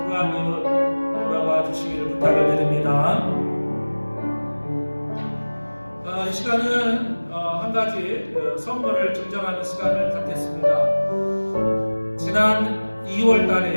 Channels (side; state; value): both; inverted; correlation -1.00